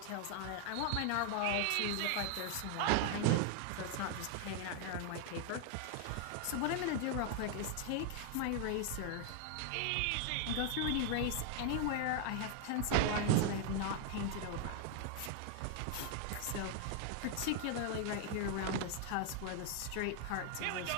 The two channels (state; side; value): different; both; correlation 0.00